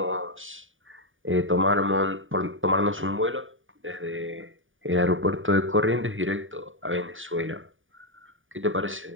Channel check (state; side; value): late; left; 0.57 ms